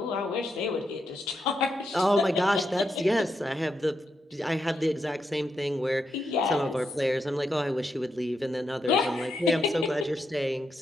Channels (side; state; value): both; normal; correlation 0.83